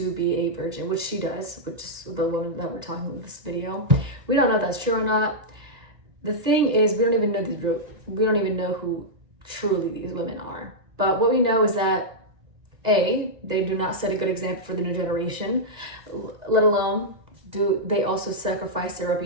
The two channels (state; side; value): late; left; 2.0 ms